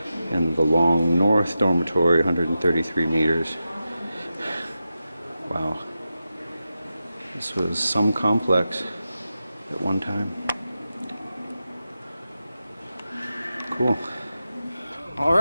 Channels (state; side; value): inverted; both; correlation -0.91